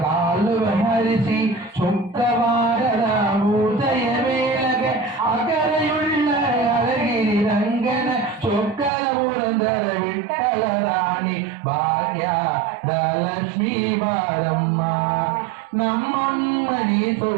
ಕಾಲುವ ಹರಿಸಿ ಸುಕ್ಕವಾರದ ಉದಯ ವೇಳಗೆ ಅಕರೆಯುಳ್ಳ ಅಳಗಿರಿ ರಂಗನ ಚೊಕ್ಕರ ಪುರಂದರ ವಿಠಲ ರಾಣಿ ಭಾಗ್ಯದ ಲಕ್ಷ್ಮೀ ಬಾರಮ್ಮ ನಮ್ಮಮ್ಮ ನೀಸು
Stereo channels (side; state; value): left; drops out; at 8.9 s